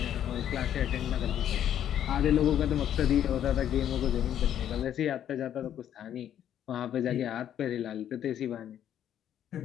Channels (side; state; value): right; quieter; 10.3 dB